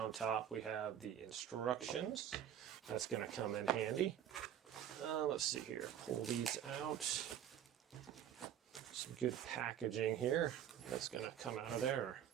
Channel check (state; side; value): quieter; left; 10.1 dB